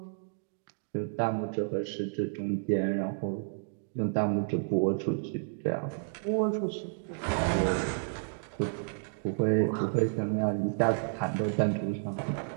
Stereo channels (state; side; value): silent; left; digital silence